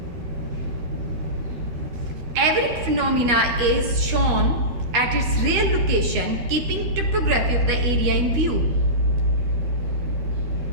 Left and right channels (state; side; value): late; left; 12 ms